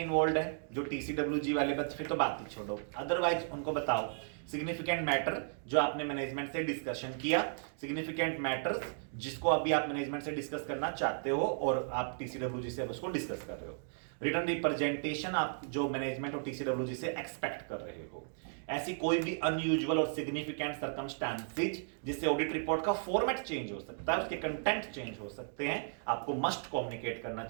इन्वॉल्व है जो टीसीडब्ल्यूजी वाले बच्चे, फिर तो बात ही छोड़ो, अदरवाइज उनको बताओ सिग्निफिकेंट मैटर जो आपने मैनेजमेंट से डिस्कशन किया, सिग्निफिकेंट मैटर्स जिसको अभी आप मैनेजमेंट से डिस्कस करना चाहते हो और आप टीसीडब्ल्यूजी से अब उसको डिस्कस कर रहे हो, रिटर्न रिप्रेजेंटेशन आप जो मैनेजमेंट और टीसीडब्ल्यूजी से एक्सपेक्ट कर रहे हो, ऐसी कोई भी अनयूजुअल और सिग्निफिकेंट सर्कमस्टांसेस जिससे ऑडिट रिपोर्ट का फॉर्मेट चेंज हो सकता है, उसके कंटेंट चेंज हो सकते हैं, आपको मस्ट कम्युनिकेट करना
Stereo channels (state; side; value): silent; left; digital silence